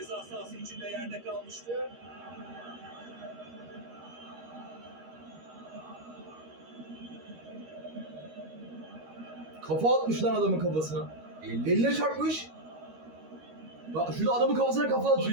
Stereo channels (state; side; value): late; left; 13 ms